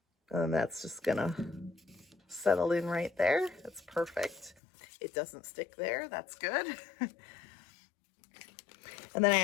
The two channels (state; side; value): drops out; right; at 4.5 s